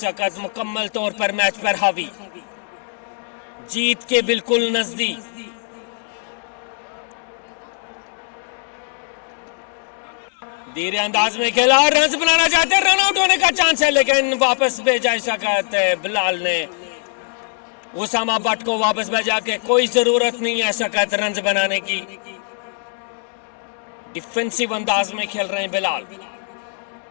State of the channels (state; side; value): silent; right; 65 dB below the other